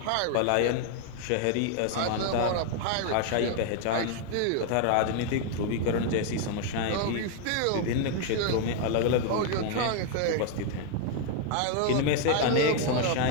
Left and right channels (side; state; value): both; different; correlation 0.00